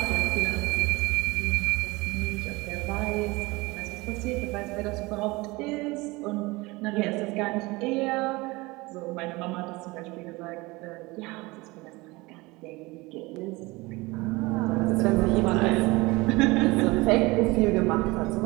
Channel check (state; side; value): quieter; left; 22.8 dB